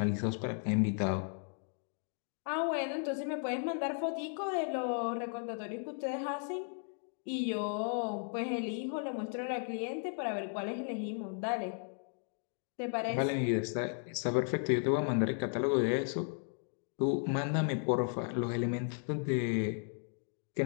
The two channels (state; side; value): silent; right; 54 dB below the other